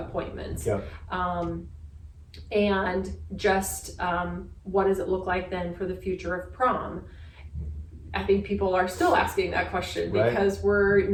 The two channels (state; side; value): identical; both; correlation 1.00